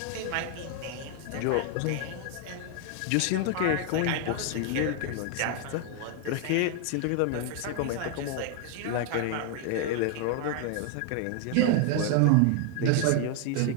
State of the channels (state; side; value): different; both; correlation 0.01